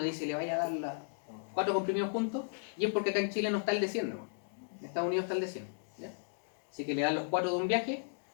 dice le vaya a dar las 4 comprimidos juntos, y es porque acá en Chile no está el de 100, ¿no? En Estados Unidos está el de 100. ¿Ya? Así que le dan los 4 de un viaje.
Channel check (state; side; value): silent; right; digital silence